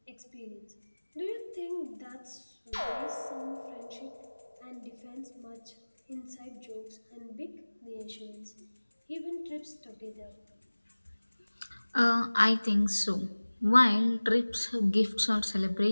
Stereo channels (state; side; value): inverted; both; correlation -1.00